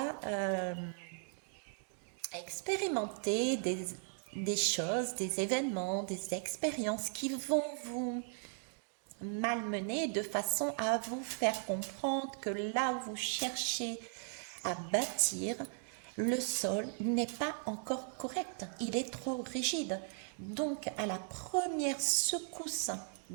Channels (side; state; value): left; silent; 53 dB below the other